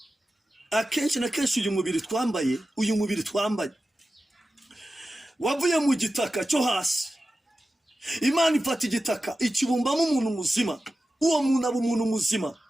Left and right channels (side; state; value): both; normal; correlation 0.93